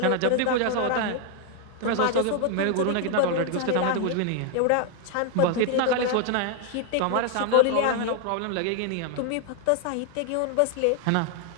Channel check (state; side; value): different; both; correlation 0.00